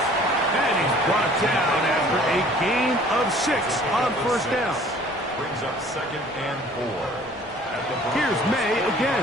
And he's brought down after a gain of 6 on 1st down. Brings up 2nd and 4. Here's May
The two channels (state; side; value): normal; both; correlation 0.52